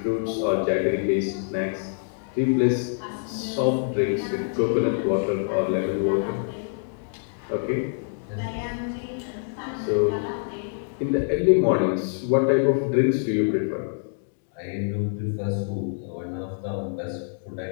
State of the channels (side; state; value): right; silent; digital silence